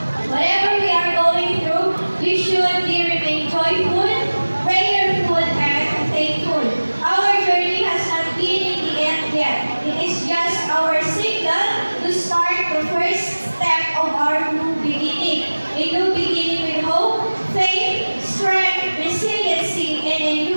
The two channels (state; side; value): inverted; both; correlation -1.00